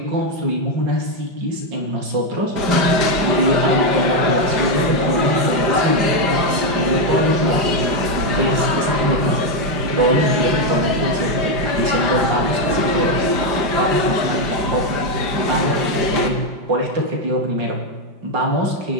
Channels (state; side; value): late; left; 5.0 ms